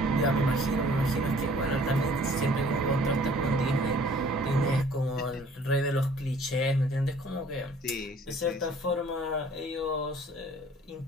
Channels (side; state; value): both; normal; correlation 0.54